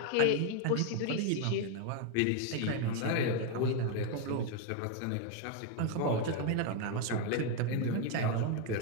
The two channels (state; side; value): different; both; correlation 0.01